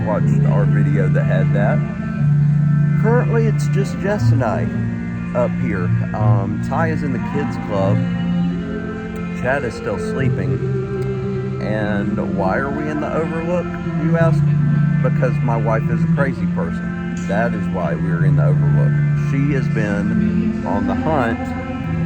watched our video that had that. Currently it's just Jess and I up here. Ty is in the kids club. Chad is still sleeping. And why are we in the Overlook, you ask? Because my wife is a crazy person. That is why we're in the Overlook. She has been on the hunt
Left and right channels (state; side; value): identical; both; correlation 1.00